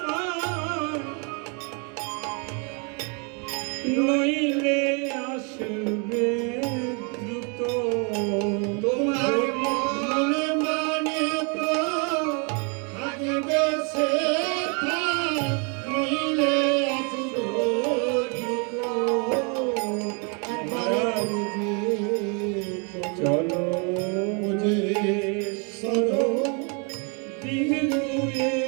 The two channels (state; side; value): quieter; left; 35.4 dB